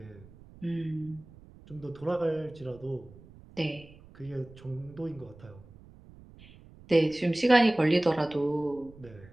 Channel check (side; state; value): right; noise; rumble, 22 dB below the sound